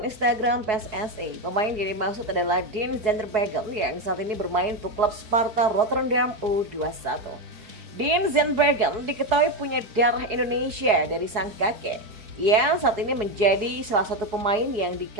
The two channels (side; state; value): left; late; 4.7 ms